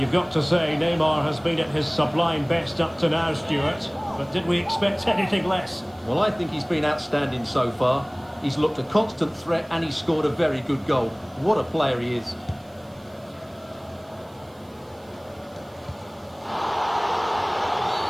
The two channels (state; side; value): noise; right; hiss, 30 dB below the sound